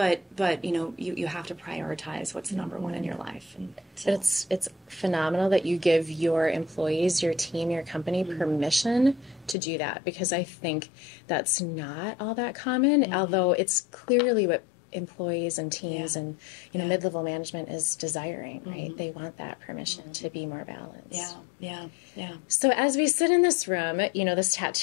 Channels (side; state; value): right; drops out; at 9.6 s